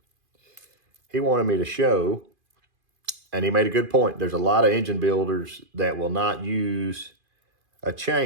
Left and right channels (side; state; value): left; late; 2.5 ms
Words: he wanted me to show, and he made a good point. There's a lot of engine builders that will not use a